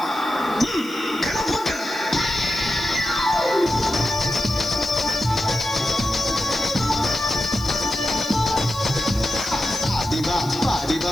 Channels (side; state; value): left; noise; hiss, 20 dB below the sound